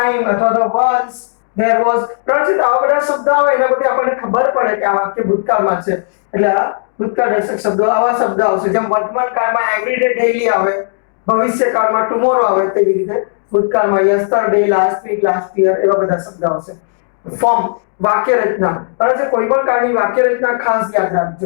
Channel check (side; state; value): right; silent; digital silence